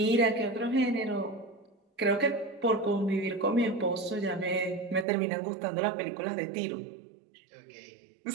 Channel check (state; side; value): drops out; left; at 5.1 s